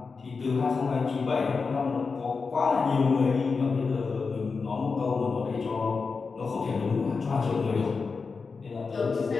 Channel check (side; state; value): right; quieter; 4.7 dB